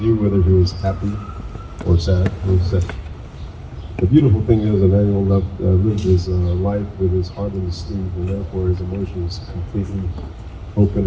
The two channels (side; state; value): both; identical; correlation 1.00